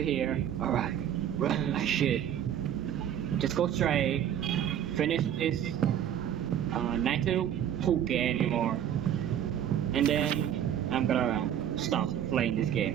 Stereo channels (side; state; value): left; quieter; 10.0 dB